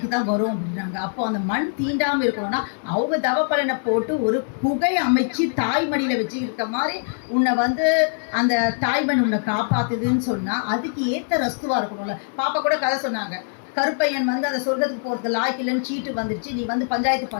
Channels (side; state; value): right; silent; digital silence